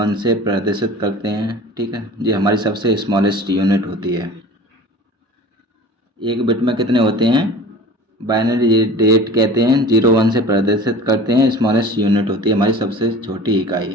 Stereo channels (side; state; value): both; normal; correlation 0.40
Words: से प्रदर्शित करते हैं, ठीक है। ये हमारी सबसे स्मॉलेस्ट यूनिट होती है। 1 बिट में कितने होते हैं? बाइनरी डिजिट कहते हैं, 0 1 से प्रदर्शित करते हैं, स्मॉलेस्ट यूनिट होती है, हमारी सबसे छोटी